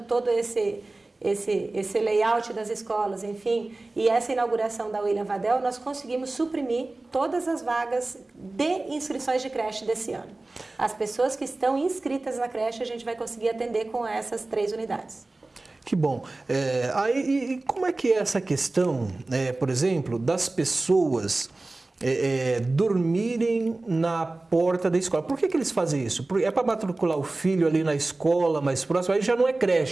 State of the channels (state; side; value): quieter; left; 3.1 dB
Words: todo esse layout das escolas, enfim, e essa inauguração da William Vadel, nós conseguimos suprimir todas as vagas de inscrições de creche desse ano. As pessoas que estão inscritas na creche, a gente vai conseguir atender com essas 3 unidades. Que bom. E como é que é essa questão, por exemplo, das pessoas dormirem na porta da escola? Por que eles fazem isso? É para matricular o filho ali na escola mais próxima? Aí já não é